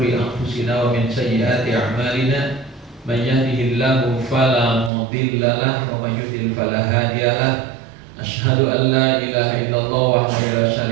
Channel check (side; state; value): left; drops out; at 4.9 s